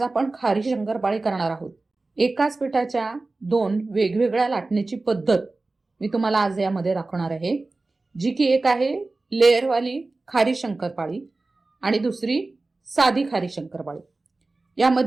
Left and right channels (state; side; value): quieter; left; 3.3 dB